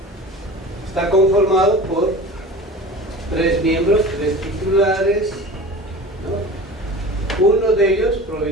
está conformado por 3 miembros, 3 titulares, ¿no? Uno de ellos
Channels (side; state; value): both; normal; correlation 0.36